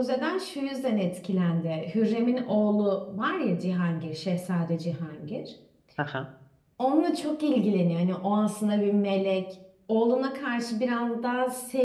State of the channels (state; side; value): identical; both; correlation 1.00